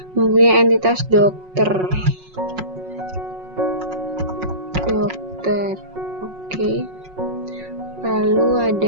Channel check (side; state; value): left; late; 5.5 ms